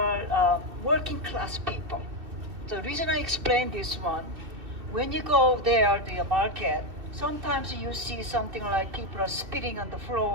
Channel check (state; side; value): late; left; 2.7 ms